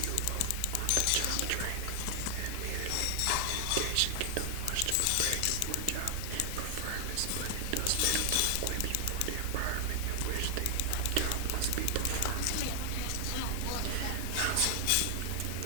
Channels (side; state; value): both; different; correlation 0.00